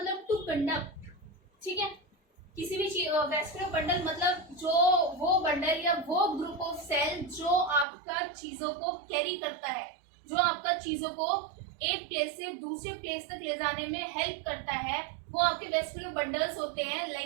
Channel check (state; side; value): drops out; left; at 7.9 s